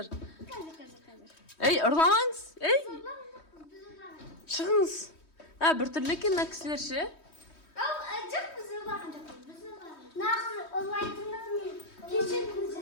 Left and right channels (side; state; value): right; late; 3.2 ms